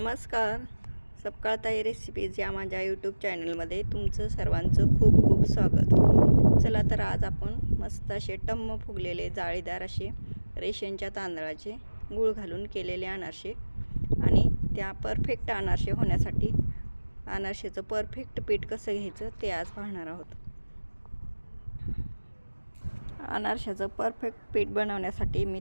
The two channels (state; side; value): inverted; both; correlation -1.00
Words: नमस्कार. सपकाळताई रेसिपीज या माझ्या यूट्यूब चॅनलमध्ये तुमचं सर्वांचं खूप खूप स्वागत. चला तर आज आपण मस्त असे टम्म फुगलेले जाळीदार असे रेशनच्या तांदळाचे गूळ घालून केलेले अनारसे आणि त्या परफेक्ट अनारसे होण्यासाठी अनारसेचं परफेक्ट पीठ कसं घ्यायचं ते आज पाहणार आहोत. अनारशाचं परफेक्ट पीठ बनवण्यासाठी